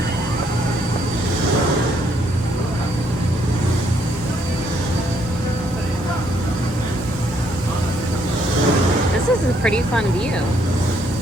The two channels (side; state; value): both; normal; correlation 0.70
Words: This is a pretty fun view.